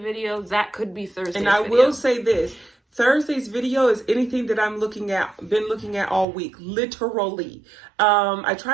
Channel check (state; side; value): drops out; left; at 6.2 s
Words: that could be Thursday's video. And I will say this. Thursday's video is anything that I'm been looking at all week, literally. I